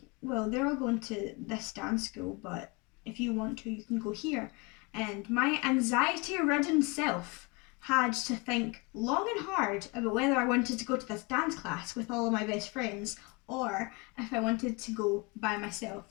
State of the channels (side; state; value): right; quieter; 27.9 dB